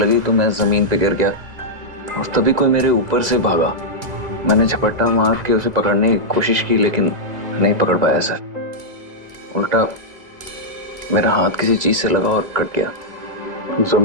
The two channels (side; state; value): left; late; 2.0 ms